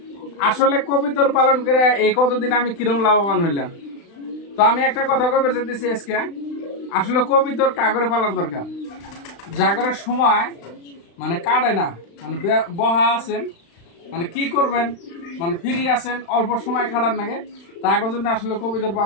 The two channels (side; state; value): right; late; 35 ms